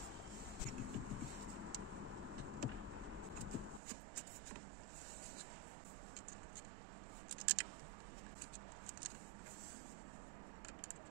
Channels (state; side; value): drops out; left; at 3.8 s